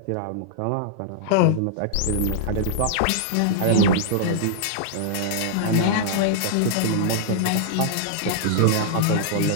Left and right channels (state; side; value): different; both; correlation -0.01